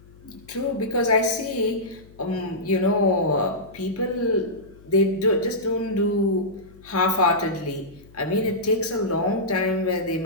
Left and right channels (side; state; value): left; noise; hum, 24 dB below the sound